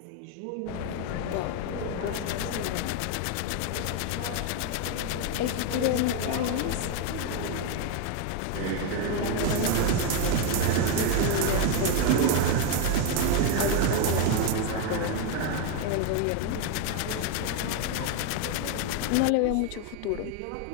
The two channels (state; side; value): different; both; correlation 0.01